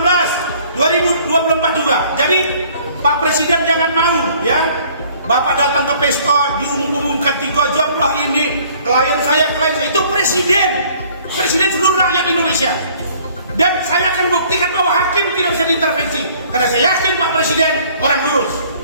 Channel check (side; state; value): both; inverted; correlation -0.56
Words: 2024 juga. Jadi Pak Presiden jangan malu ya. Bapak datang ke pesta diumumkan 3 jam lah ini klien saya itu presiden seluruh rakyat Indonesia. Dan saya akan buktikan bahwa hakim tidak bisa diintervensi karena saya yakin Pak Presiden orang lurus.